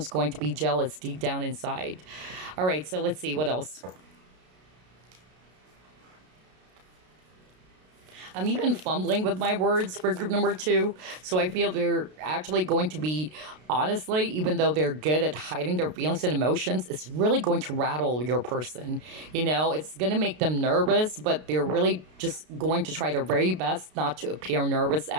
going to be jealous deep down inside. All right, so let's see what else. I'm even fumbling with my words for group number two. So I feel they're actually going to be, honestly, even though they're good at hiding their feelings and emotions, it's really going to rattle your person. It's going to make them nervous, but they're really just going to try their very best not to appear nervous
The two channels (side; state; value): left; late; 33 ms